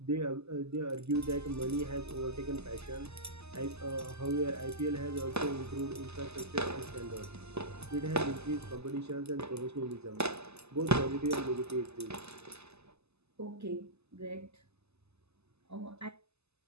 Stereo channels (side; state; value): left; late; 0.79 ms